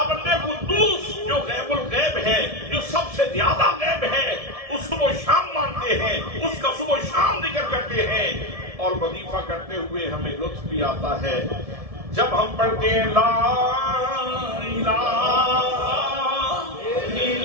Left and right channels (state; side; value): late; left; 1.7 ms